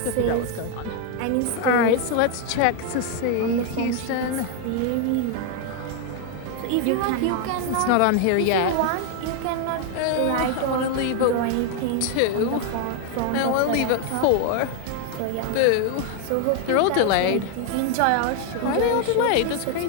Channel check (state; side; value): different; both; correlation 0.01